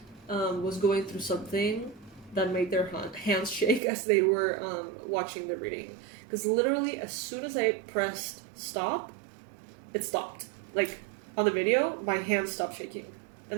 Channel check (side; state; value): left; drops out; at 3.8 s